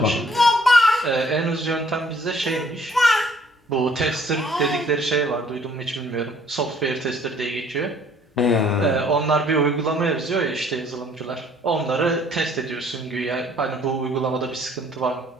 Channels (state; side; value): normal; both; correlation 0.60